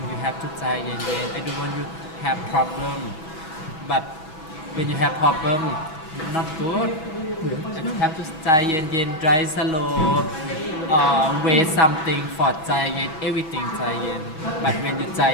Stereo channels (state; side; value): late; right; 6.3 ms